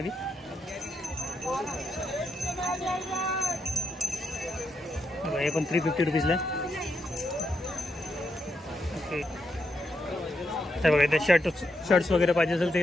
बघा हे पण 350 रुपीजला आहे. ओके तर बघा इथे शर्ट्स वगैरे पाहिजे असेल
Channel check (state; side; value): normal; both; correlation 0.82